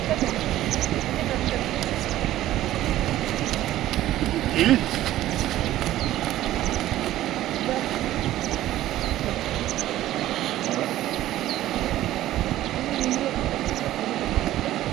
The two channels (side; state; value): left; quieter; 14.2 dB